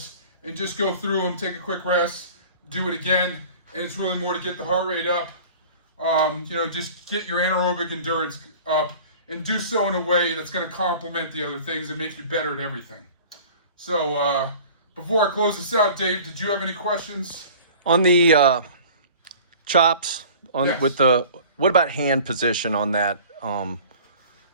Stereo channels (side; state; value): both; inverted; correlation -0.44